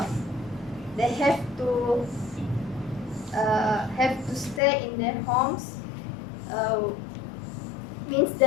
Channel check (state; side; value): drops out; right; at 4.6 s